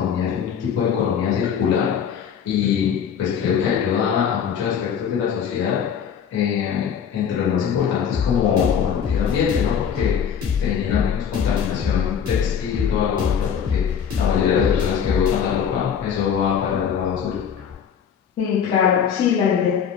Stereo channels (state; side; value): quieter; right; 7.8 dB